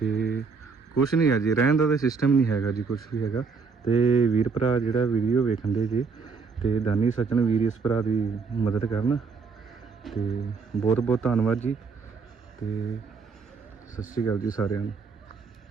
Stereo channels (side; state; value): left; quieter; 5.0 dB